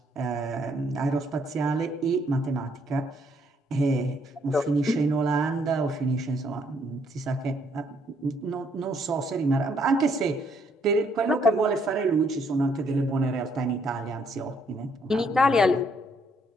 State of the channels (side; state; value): both; normal; correlation 0.69